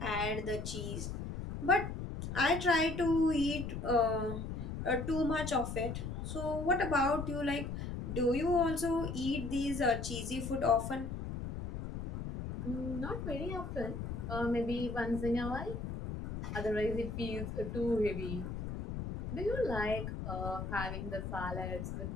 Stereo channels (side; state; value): left; noise; rumble, 5 dB below the sound